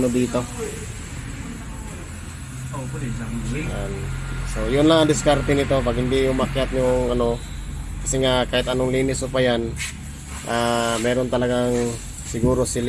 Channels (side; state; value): both; identical; correlation 1.00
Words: ano dito. Ayan. So yun lang ang diskarte nito pag hindi umakyat yung ano. Kasi nga kahit anong linis o pa yan, meron talagang siguro